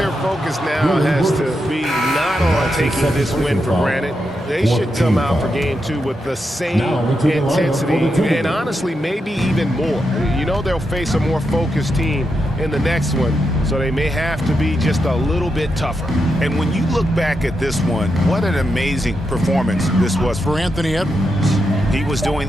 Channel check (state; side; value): normal; both; correlation 0.85